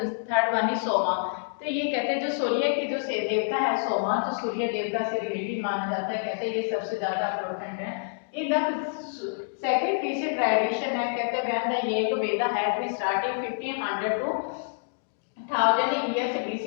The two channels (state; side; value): silent; right; digital silence